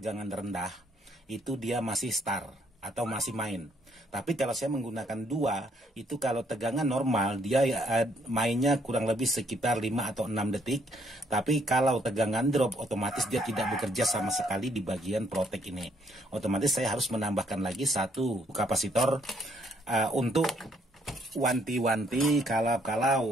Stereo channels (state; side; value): normal; both; correlation 0.69